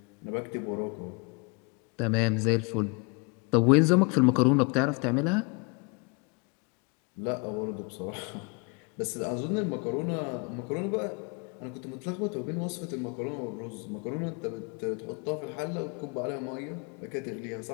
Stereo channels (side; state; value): right; quieter; 31.9 dB